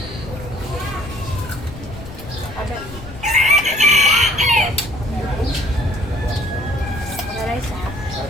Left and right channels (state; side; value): noise; left; rumble, 14 dB below the sound